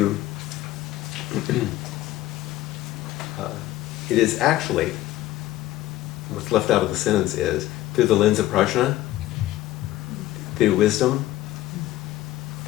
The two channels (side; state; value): right; quieter; 15.4 dB